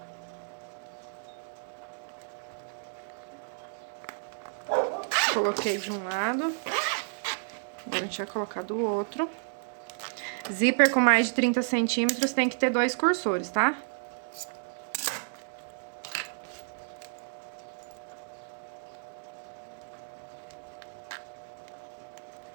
Coloquei de um lado. Agora a gente vai colocar do outro. Zíper com mais de 30 centímetros tem que ter 2 cursores, tá?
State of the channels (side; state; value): left; silent; digital silence